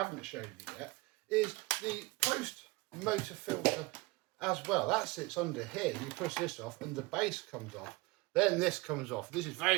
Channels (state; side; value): quieter; left; 22.8 dB